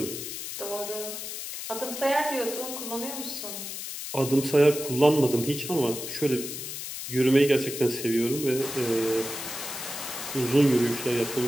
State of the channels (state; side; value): noise; left; hiss, 7 dB below the sound